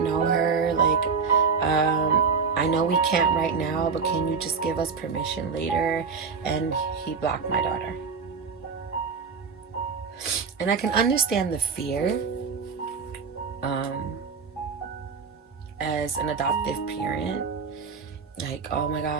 her. Like, I know we can't right now, but can you just give us permission later? And he blocked my daughter. And I can understand the fear as an adoptive parent. Like, oh my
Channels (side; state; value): left; quieter; 5.3 dB